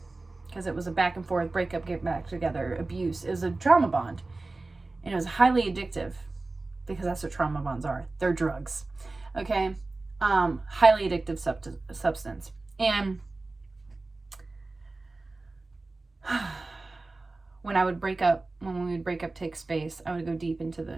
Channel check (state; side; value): quieter; left; 3.3 dB